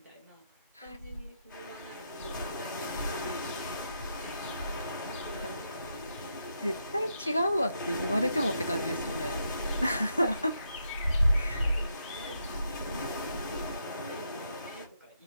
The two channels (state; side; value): inverted; both; correlation -0.80